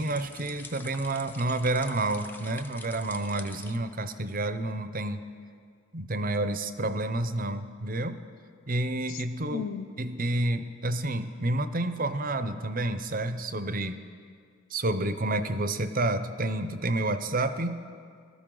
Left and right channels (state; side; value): normal; both; correlation 0.42